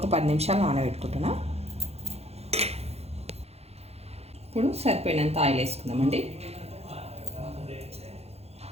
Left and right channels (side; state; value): left; late; 0.30 ms